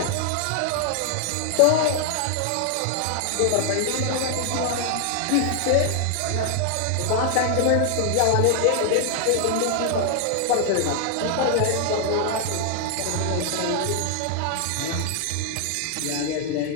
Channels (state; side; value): different; both; correlation 0.00